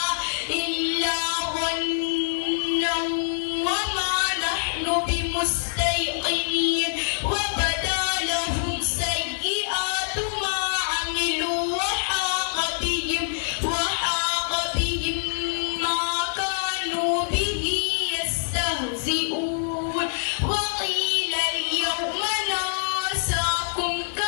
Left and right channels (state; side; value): silent; right; 62 dB below the other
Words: إلا ظنا وما نحن بمستيقنين وبدا لهم سيئات ما عملوا وحاق بهم ما كانوا به يستهزئون وقيل اليوم ننساكم